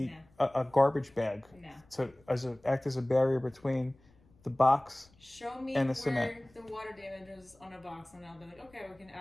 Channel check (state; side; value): noise; left; rumble, 30 dB below the sound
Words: a garbage bag to act as a barrier between the box Show me and the where cement. the water damage is on a box, and I'll be like, okay, we can